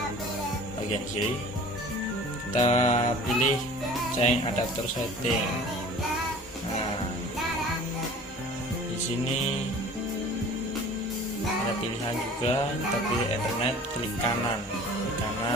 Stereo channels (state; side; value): normal; both; correlation 0.45